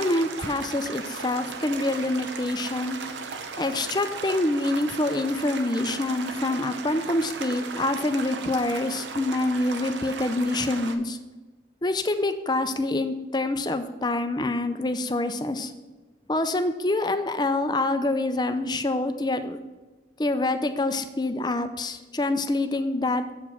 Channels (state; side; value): normal; both; correlation 0.59